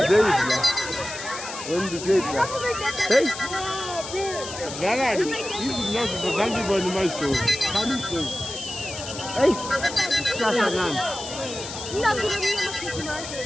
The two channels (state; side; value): noise; left; hiss, 10 dB below the sound